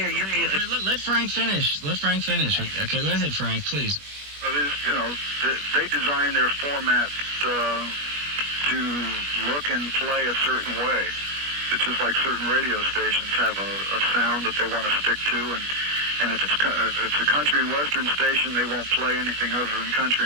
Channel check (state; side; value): late; left; 21 ms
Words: hear your music. Let Frank finish. Okay, go ahead, Frank, please. They design their format to look and play a certain way. It's just like certain radio stations have a sound that they want to stick to, and if it's a country and western station, they won't play anything other than country